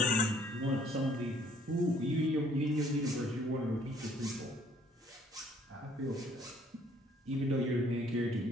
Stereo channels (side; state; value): both; normal; correlation 0.61